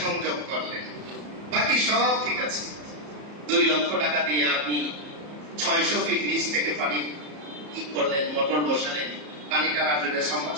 সংযোগ করলেন, বাকি সব ঠিক আছে। 2 লক্ষ টাকা দিয়ে আপনি 600 ফিট নিচ থেকে পানি কি করলেন, মোটর বসালেন, পানি টানার জন্য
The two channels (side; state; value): left; late; 34 ms